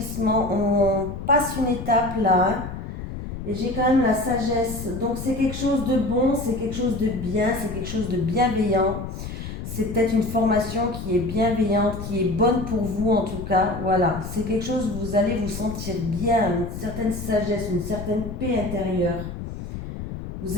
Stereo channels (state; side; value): noise; left; rumble, 8 dB below the sound